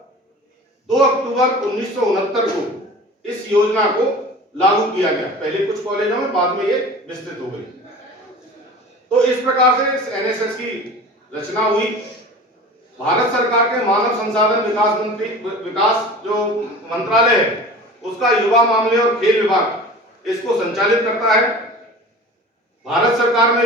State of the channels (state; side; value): normal; both; correlation 0.38